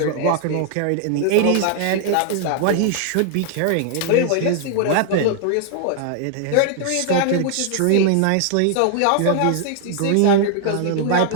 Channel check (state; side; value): different; both; correlation 0.00